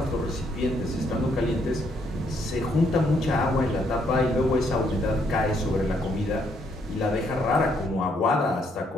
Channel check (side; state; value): both; normal; correlation 0.72